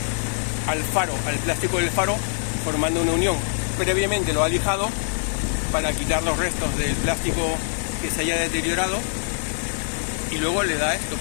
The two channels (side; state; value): right; silent; digital silence